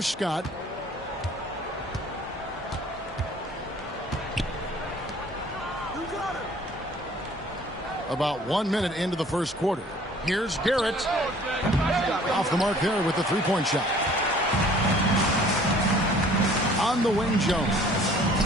Scott. About 1 minute into the first quarter. Here's Garrett. Off the mark there with the three-point shot. On the wing, Jones.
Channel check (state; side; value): normal; both; correlation 0.53